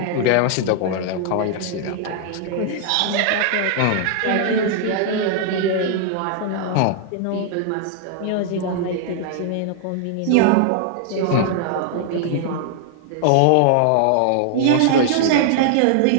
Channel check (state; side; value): different; both; correlation 0.00